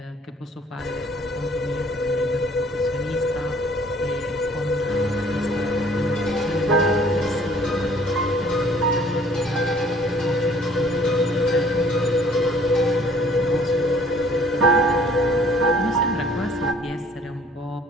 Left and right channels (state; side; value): normal; both; correlation 0.56